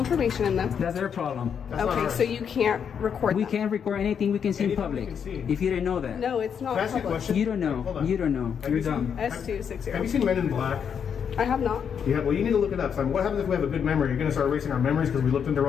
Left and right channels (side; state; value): right; quieter; 7.5 dB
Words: in them. That's their problem. That's not Okay, ours. so you can't record We them. can't record anything we can see in Anything we public. can see. If you didn't know that. No, it's not Can I ask you a public. question? You don't know. Hold on. You don't know. Have You're you seen- dumb. S260. Have you seen Men in Black? I have not. Yeah, well, you need to look it up. So what happens if we have a good memory? You're going to start erasing our memories because we looked in the